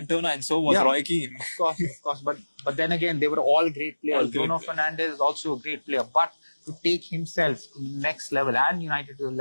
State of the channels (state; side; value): inverted; both; correlation -1.00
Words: and so was Roy Keane. Of course. But then again, they were all great players. Bruno Fernandes is also a great player, but to take himself to the next level and United to